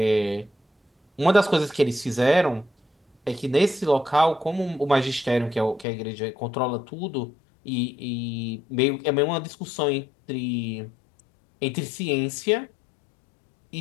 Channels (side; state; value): right; drops out; at 5.9 s